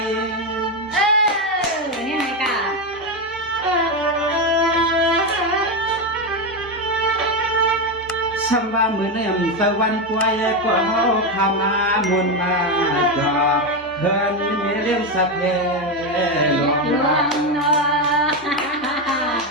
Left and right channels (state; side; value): normal; both; correlation 0.10